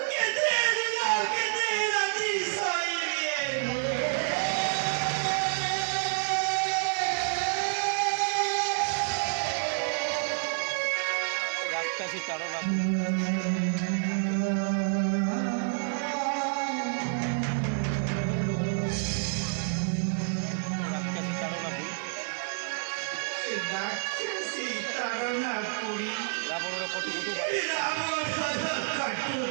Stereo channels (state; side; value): silent; left; digital silence